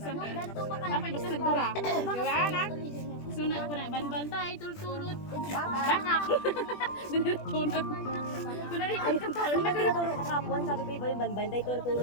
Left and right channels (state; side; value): late; right; 20 ms